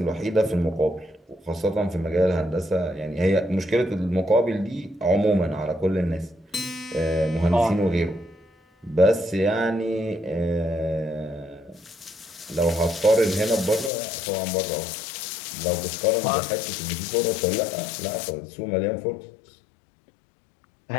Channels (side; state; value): right; drops out; at 13.9 s